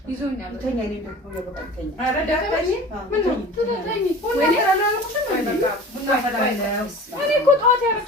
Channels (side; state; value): both; normal; correlation 0.39